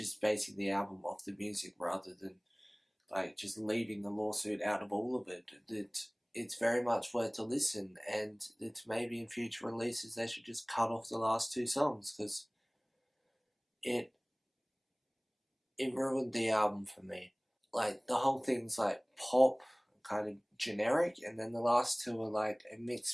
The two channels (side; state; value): both; identical; correlation 1.00